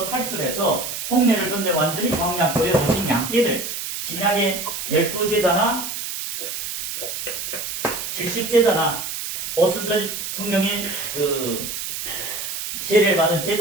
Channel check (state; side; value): noise; right; hiss, 5 dB below the sound